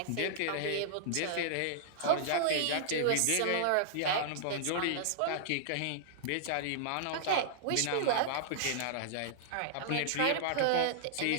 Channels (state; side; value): different; both; correlation -0.01